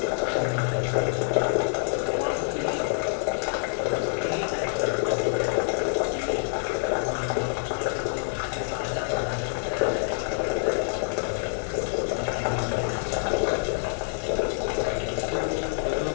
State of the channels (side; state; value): right; silent; digital silence